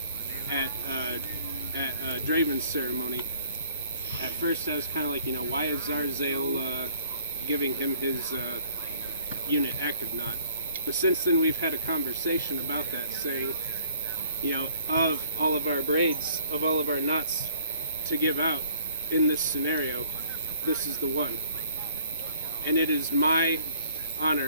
at Draven's ceremony, at first I was kind of like, why is Zarzale giving him his unit active knot? But since then we've had a conversation about that, saying, of all of our braids, of all of our knots to give out in this scenario, this is the one. And it is my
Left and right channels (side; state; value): both; inverted; correlation -0.59